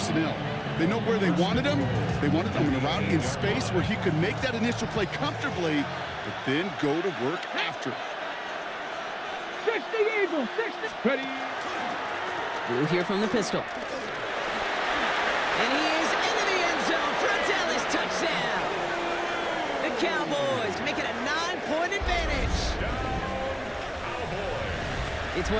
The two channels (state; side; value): identical; both; correlation 1.00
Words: They know where they wanted them. They wanted them in a route in space where he could make that initial play comfortably, but then go to work after. 60 Eagles, 60. Ready. Blue here from the pistol. And he is into the end zone for a Dallas touchdown. The Cowboys make it a 9-point advantage. It's